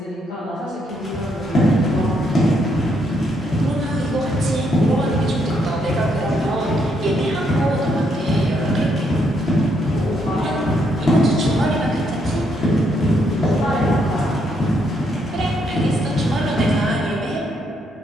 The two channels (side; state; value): both; normal; correlation 0.75